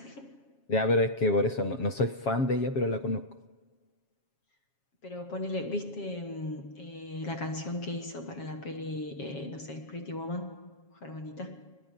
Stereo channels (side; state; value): right; late; 7.3 ms